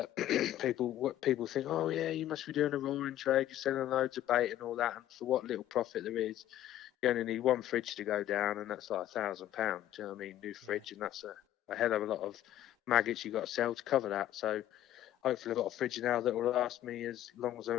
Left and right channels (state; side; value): quieter; right; 12.8 dB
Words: people think, oh yeah, you must be doing a roaring trade, you're selling loads of bait and all that, and for what little profit there is, you only need one fridge to go down, and that's like £1,000. Do you know what I mean? New fridge, and that's a hell of a lot of maggots you've got to sell to cover that. So hopefully I've got a fridge now that will last me as long as I